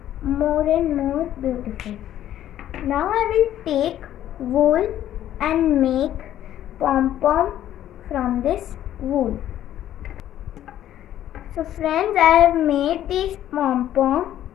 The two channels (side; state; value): right; quieter; 12.0 dB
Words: more and more beautiful. Now I will take wool and make pom-pom from this wool. So friends, I have made these pom-pom,